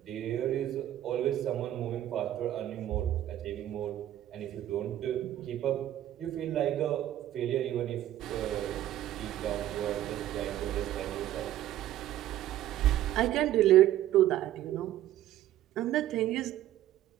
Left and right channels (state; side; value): quieter; left; 13.0 dB